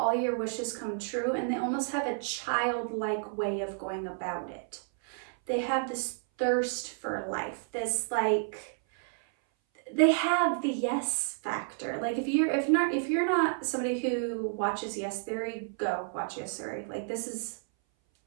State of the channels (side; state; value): left; silent; 57 dB below the other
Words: your wishes come true, and they almost have a childlike way of going about it. They have this thirst for life, this like, they have the yes factor. Like, if you're not somebody who watches Yes Theory, go watch Yes Theory. Like, this is